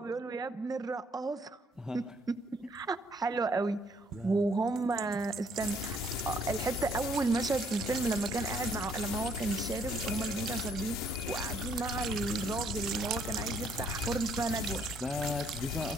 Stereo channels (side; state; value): both; normal; correlation 0.67